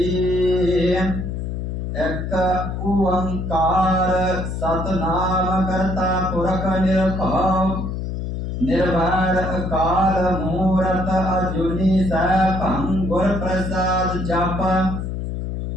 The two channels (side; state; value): left; noise; hum, 4 dB below the sound